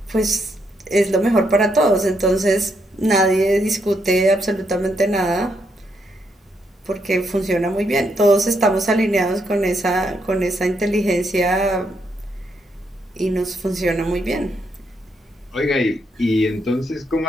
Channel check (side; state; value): both; normal; correlation 0.77